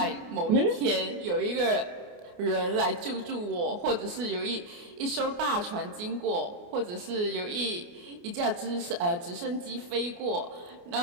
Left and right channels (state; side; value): late; left; 29 ms